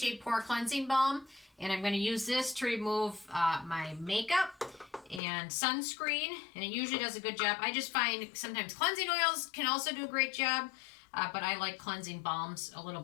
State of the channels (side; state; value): right; drops out; at 5.2 s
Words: Pore Cleansing Balm, and I'm going to use this to remove my makeup and sunscreen, and it usually does a good job. I just find sometimes cleansing oils can also do a great job. But I like cleansing balms a little